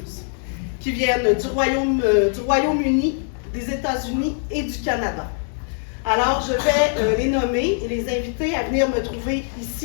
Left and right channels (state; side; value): silent; right; 59 dB below the other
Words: qui viennent du Royaume-Uni, des États-Unis et du Canada. Alors, je vais les nommer et les inviter à venir me trouver